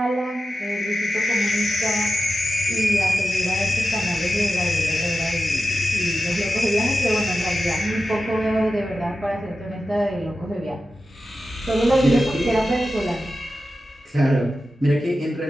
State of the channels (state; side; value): normal; both; correlation 0.92